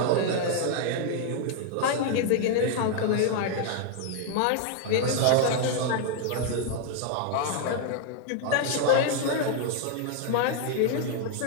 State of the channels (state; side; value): different; both; correlation 0.00